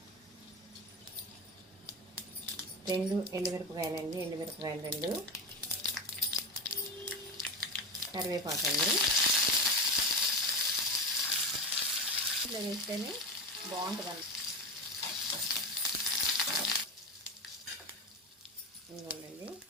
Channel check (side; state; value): both; normal; correlation 0.20